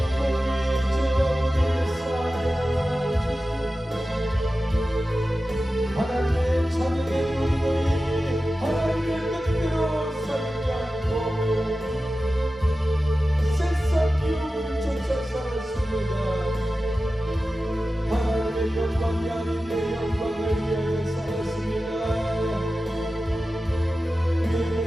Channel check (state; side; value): normal; both; correlation 0.94